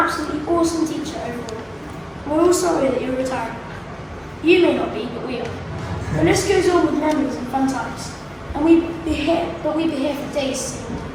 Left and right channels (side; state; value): both; identical; correlation 1.00